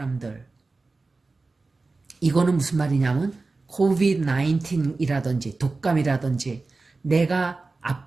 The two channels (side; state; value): left; quieter; 3.7 dB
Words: 이거는 무슨 말이냐면 COVID-19이라든지 독감이라든지, 내가